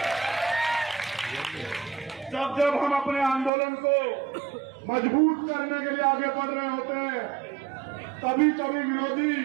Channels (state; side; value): drops out; left; at 3.5 s